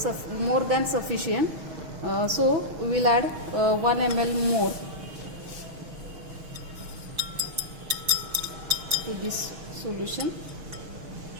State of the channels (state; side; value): late; left; 6.3 ms